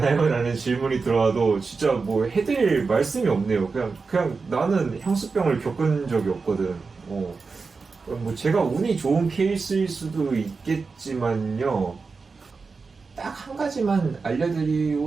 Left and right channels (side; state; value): left; quieter; 4.5 dB